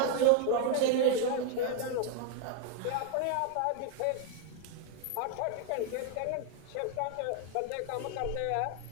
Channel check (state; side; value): different; both; correlation 0.00